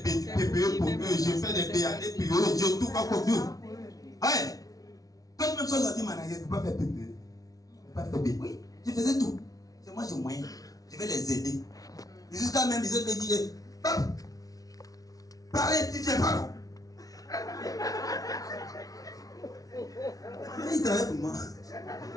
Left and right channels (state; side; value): late; right; 0.18 ms